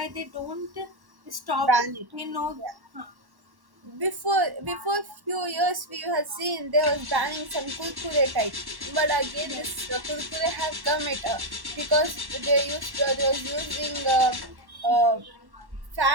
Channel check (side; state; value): left; late; 1.1 ms